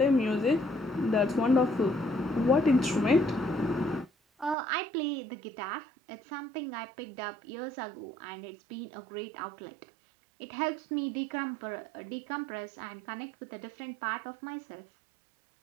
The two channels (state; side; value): drops out; left; at 4.5 s